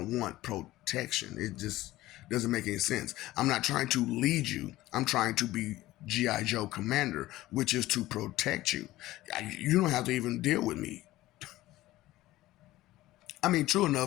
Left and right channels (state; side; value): quieter; right; 16.6 dB